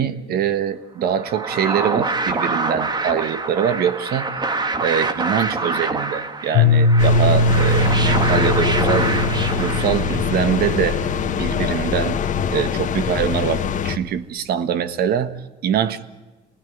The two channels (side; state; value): both; normal; correlation 0.01